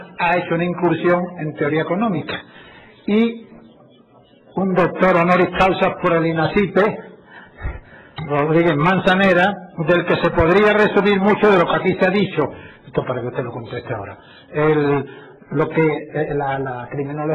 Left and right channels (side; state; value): both; identical; correlation 1.00